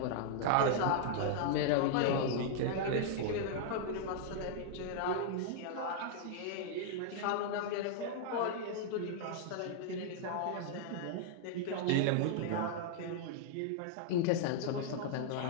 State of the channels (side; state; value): both; different; correlation -0.01